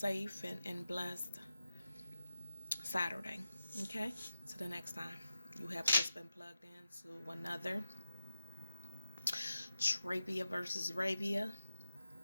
and blessed Saturday. Okay? Till the next time. You have just been plugged into another Trabia versus Rabia,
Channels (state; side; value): inverted; both; correlation -0.90